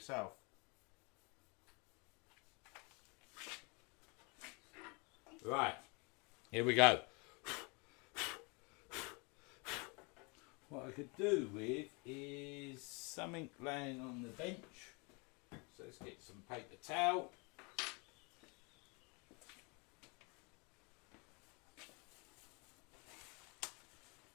Right, here we go. What I could do with is something laying on the bench. So let's get some paper towel.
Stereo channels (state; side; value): quieter; right; 30.6 dB